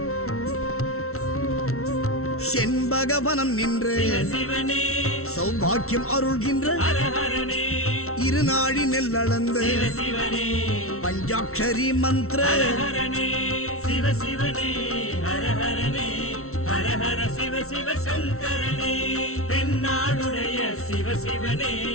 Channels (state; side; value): late; right; 0.63 ms